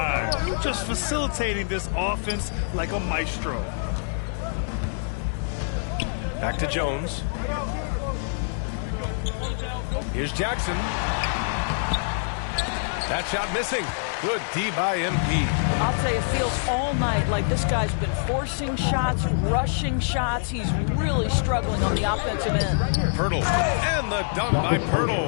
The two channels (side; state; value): right; silent; digital silence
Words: just facilitating this offense like a maestro. Back to Jones. Here's Jackson. That shot missing. Good D by MP. I'll tell you, it feels all night like this guy's been forcing shots, rushing shots. He's really struggling on the offensive end. Poeltl. And the dunk by